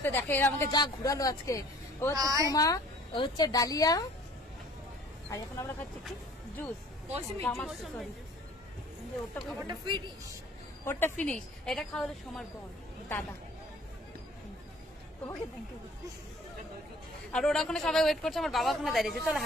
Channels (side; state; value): both; normal; correlation 0.52